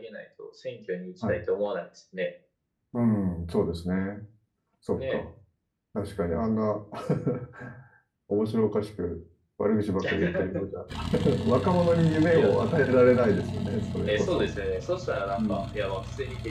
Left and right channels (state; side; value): identical; both; correlation 1.00